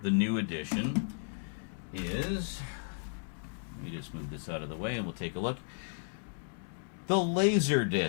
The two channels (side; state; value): right; silent; digital silence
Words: the new edition is, let me just move this out of the way and we'll take a look. The